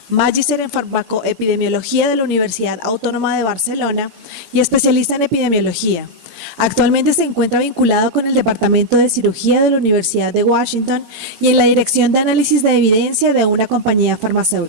magíster en farmacoepidemiología de la Universidad Autónoma de Barcelona y especialista en epidemiología. Actualmente se encuentra vinculado con el Departamento de Cirugía de la Universidad de Washington y en la Dirección de Análisis de Evidencia de una compañía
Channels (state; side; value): normal; both; correlation -0.03